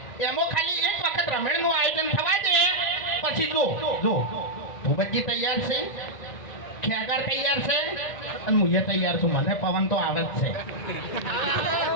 એમાં ખાલી એક વખત રમેણનું આયોજન થવા દે પછી જો ભૂપતજી તૈયાર છે ખેગાર તૈયાર છે અને હું તૈયાર છું મને પવન તો આવે જ છે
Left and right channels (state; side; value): late; right; 1.5 ms